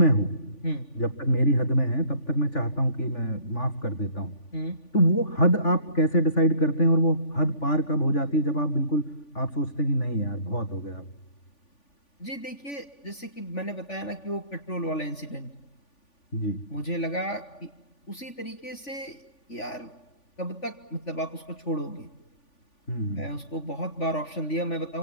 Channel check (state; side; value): late; right; 3.5 ms